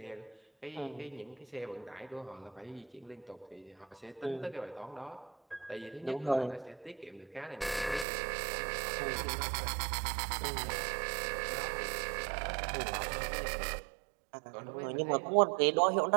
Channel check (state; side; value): drops out; left; at 8.1 s